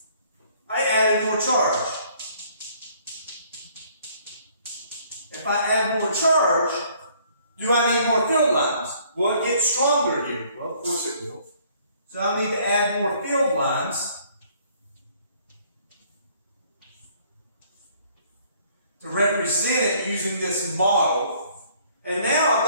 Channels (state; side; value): inverted; both; correlation -0.61